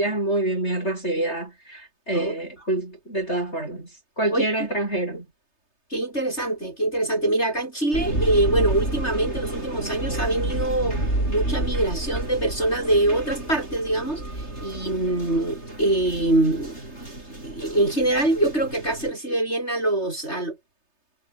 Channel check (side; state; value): right; late; 3.3 ms